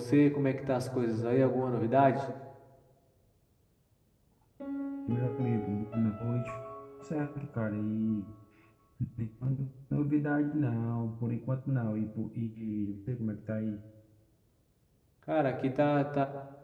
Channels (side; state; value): both; identical; correlation 1.00